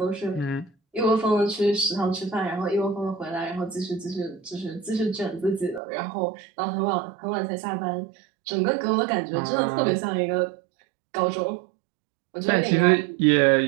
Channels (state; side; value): drops out; left; at 5.8 s